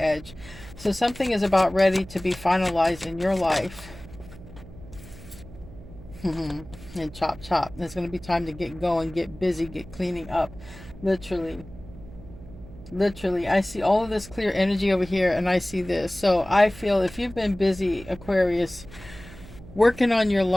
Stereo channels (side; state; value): right; noise; hum, 17 dB below the sound